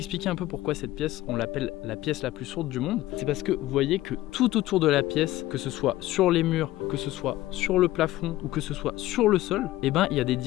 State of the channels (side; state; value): right; quieter; 16.1 dB